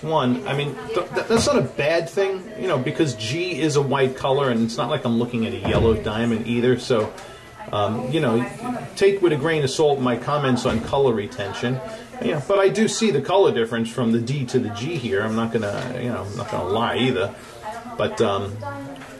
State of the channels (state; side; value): identical; both; correlation 1.00